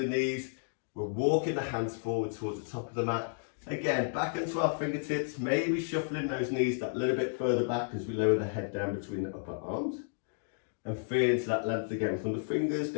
knees. We're walking the hands forward towards the top of the mat. Again, back into our fingertips, maybe shuffling those knees that little bit further back as we lower the head down between the upper arms. And feel into that length again from the fingers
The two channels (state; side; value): silent; right; digital silence